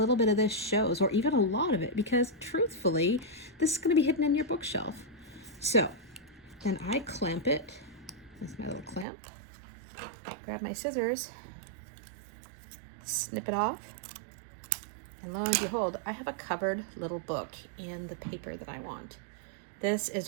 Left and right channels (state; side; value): drops out; left; at 9.1 s